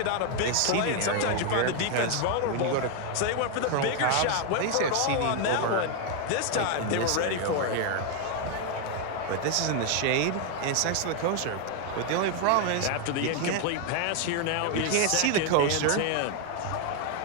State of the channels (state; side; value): different; both; correlation 0.01